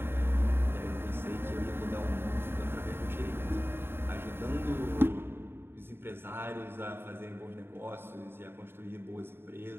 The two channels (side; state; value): left; late; 0.11 ms